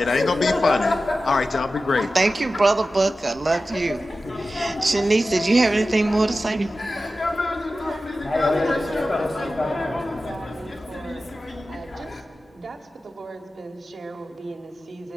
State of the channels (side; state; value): both; normal; correlation 0.94